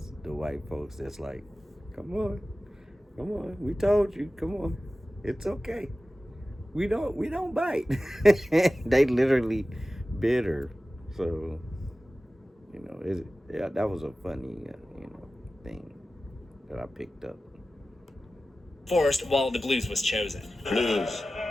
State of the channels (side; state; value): both; normal; correlation 0.95